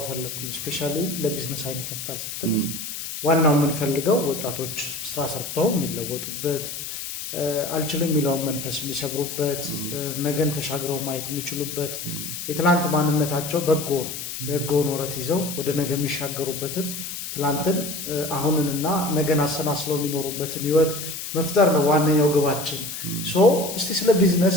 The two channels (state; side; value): noise; left; hiss, 7 dB below the sound